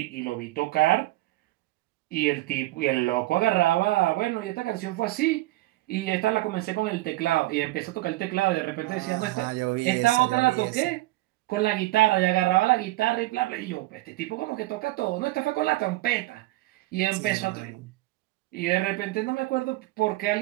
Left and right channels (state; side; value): quieter; left; 18.4 dB